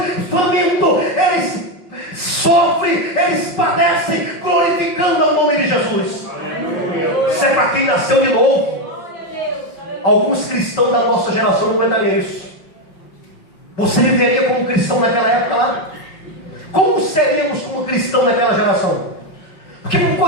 famintos. Eles Jesus. Isso é para quem nasceu de novo. Alguns cristãos da nossa geração não aguentariam isso. Você viveria como cristão naquela época lá? Como seríamos como cristão naquela geração? Porque uma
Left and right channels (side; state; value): right; late; 5.3 ms